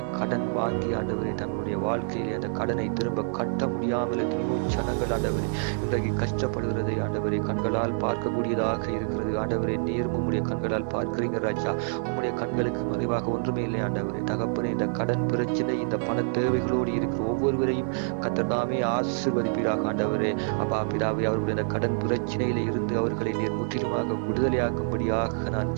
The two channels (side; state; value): left; silent; digital silence